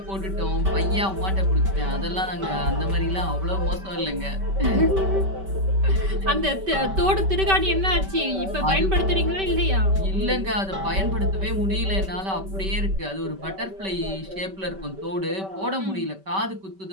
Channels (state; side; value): late; left; 5.2 ms